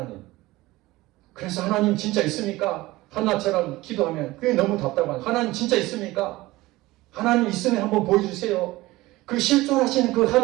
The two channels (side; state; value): left; quieter; 19.0 dB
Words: 그래서 하나님 진짜 있습니까? 한나처럼 기도하면 그게 너무 답답한 하나님 진짜 있습니까? 하나님 있으면 한번 보여주세요. 그 실존하시는 그